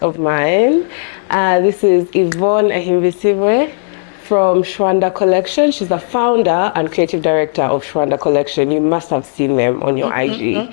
of mine. This is Yvonne Ahimbisibwe from Shwanda Kollection. She's the founder and creative director of Shwanda Kollection. You must have seen them on your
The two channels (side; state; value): right; silent; digital silence